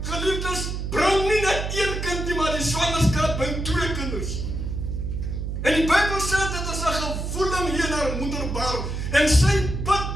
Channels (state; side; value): noise; right; hum, 4 dB below the sound